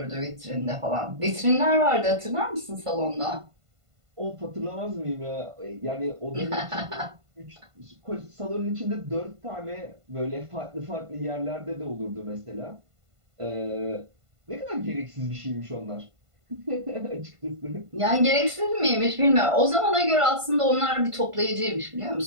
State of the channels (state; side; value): late; left; 1.5 ms